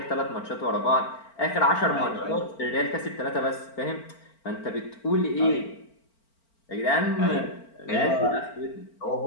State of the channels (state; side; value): late; right; 4.4 ms